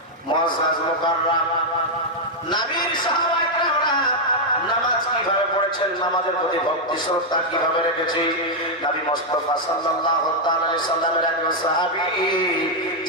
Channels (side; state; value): both; normal; correlation -0.01